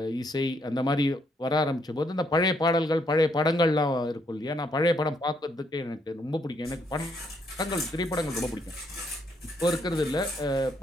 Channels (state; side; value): normal; both; correlation 0.73